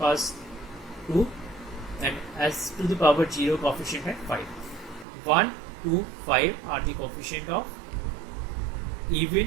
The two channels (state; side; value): drops out; left; at 5.1 s